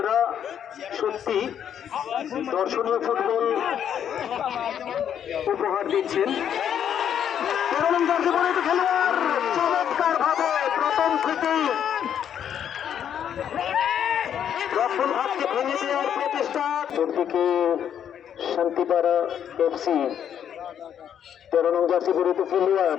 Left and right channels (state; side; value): quieter; right; 9.2 dB